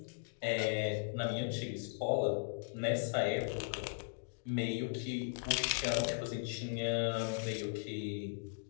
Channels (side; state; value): right; silent; digital silence